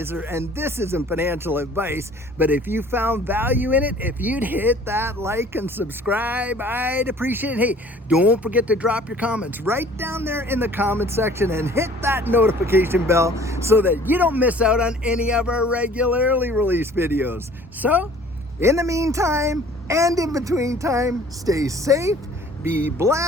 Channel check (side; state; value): both; normal; correlation 0.51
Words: and this isn't financial advice, but if you found value in it, if you'd hit that like and subscribe, I'd appreciate it. Hey, don't forget to drop your comments right down there in the comment section, and hit that notification bell so that you don't miss out on any of our regularly released videos. So, in the meantime, and in between time, stay safe, be